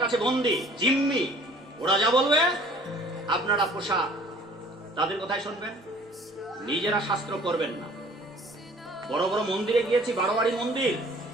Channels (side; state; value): both; normal; correlation 0.52